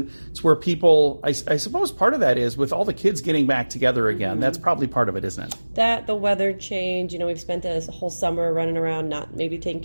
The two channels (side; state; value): both; inverted; correlation -1.00